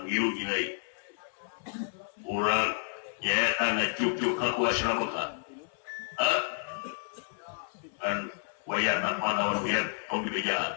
ngilu gilai urang nyata ngecuk-cuk ka ku asrama kan wayana panaon biar tong dibejaan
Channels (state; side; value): silent; right; 55 dB below the other